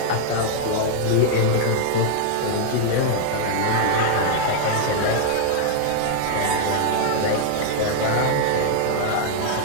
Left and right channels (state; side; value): different; both; correlation -0.01